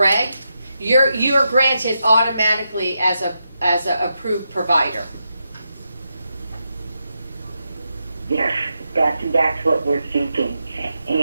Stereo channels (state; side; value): inverted; both; correlation -0.86